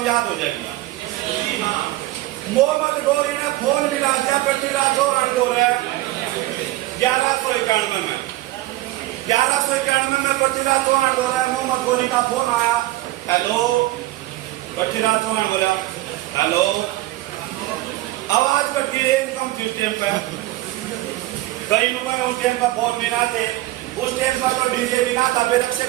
याद हो जाएगी। मोहम्मद गोरी ने फोन मिला दिया पृथ्वीराज चौहान को 1191 में 1191 में पृथ्वीराज चौहान बोला मोहम्मद गोरी का फोन आया हेलो पृथ्वीराज चौहान बोला हेलो आवाज कट गई एकदम सिस्टम पे कई लोगों ने उस टाइम पर फोन नहीं आते उस टाइम पर तो डीजे भी ना था फिर अक्षय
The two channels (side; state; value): left; quieter; 17.4 dB